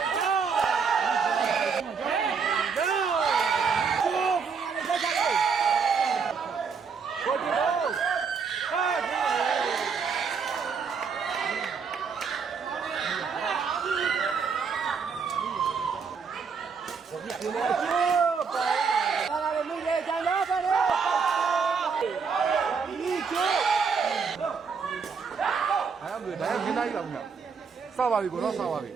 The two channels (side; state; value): left; quieter; 5.7 dB